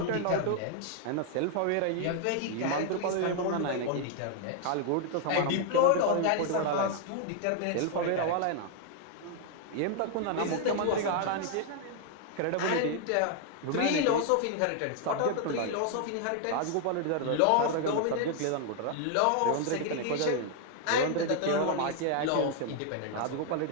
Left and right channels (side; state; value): both; different; correlation 0.00